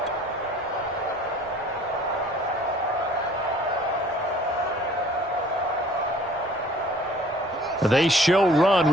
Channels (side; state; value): both; normal; correlation 0.53